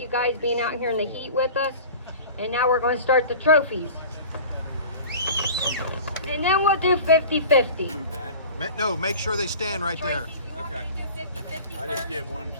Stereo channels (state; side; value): inverted; both; correlation -0.39